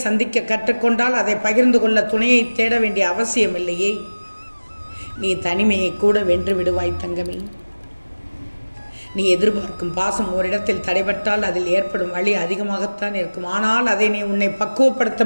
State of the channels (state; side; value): inverted; both; correlation -1.00